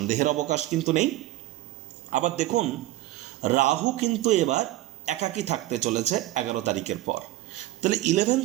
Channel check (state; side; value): quieter; left; 16.1 dB